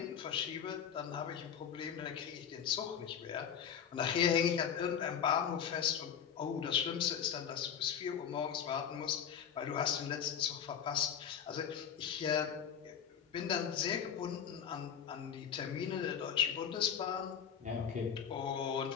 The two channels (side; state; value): right; quieter; 8.2 dB